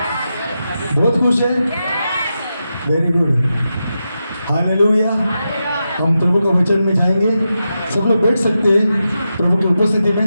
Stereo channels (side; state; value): both; inverted; correlation -0.89